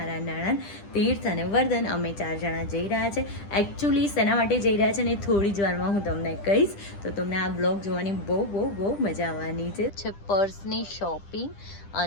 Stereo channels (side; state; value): right; late; 10 ms